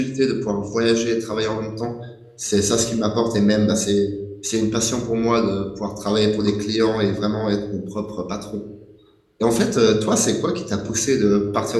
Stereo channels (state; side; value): identical; both; correlation 1.00